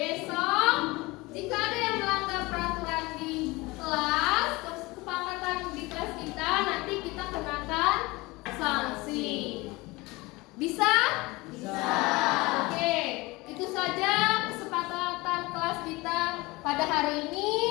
Jika ada yang melanggar peraturan di kelas, kesepakatan di kelas kita, nanti kita kenakan sanksi. Bisa? Bisa. Oke, itu saja kesepakatan kelas kita pada hari ini.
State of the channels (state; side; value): quieter; right; 22.6 dB